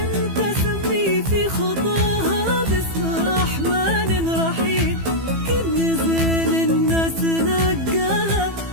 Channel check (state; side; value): late; left; 15 ms